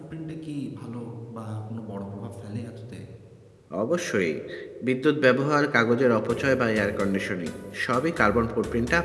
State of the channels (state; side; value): identical; both; correlation 1.00